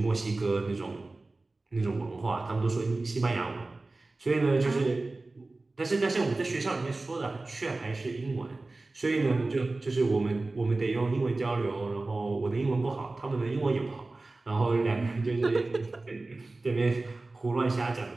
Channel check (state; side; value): quieter; left; 3.2 dB